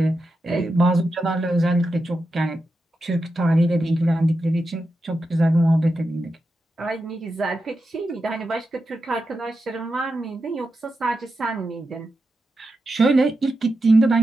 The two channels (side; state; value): both; normal; correlation 0.89